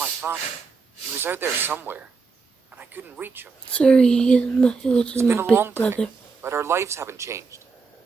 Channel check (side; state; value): left; quieter; 4.7 dB